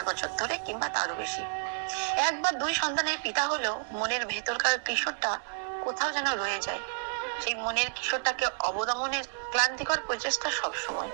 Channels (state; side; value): silent; left; digital silence